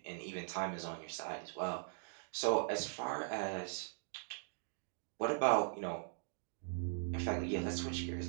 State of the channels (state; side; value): silent; left; digital silence